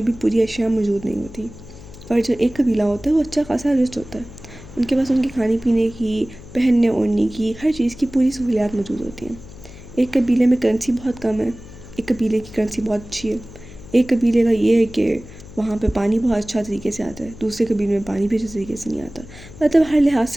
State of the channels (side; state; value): left; noise; hum, 17 dB below the sound